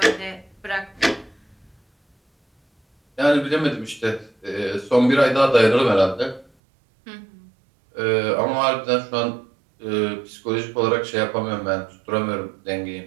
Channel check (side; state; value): left; drops out; at 6.5 s